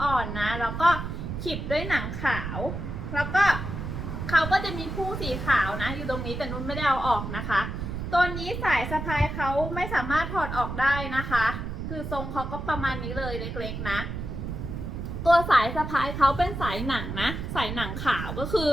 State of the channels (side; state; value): right; noise; rumble, 5 dB below the sound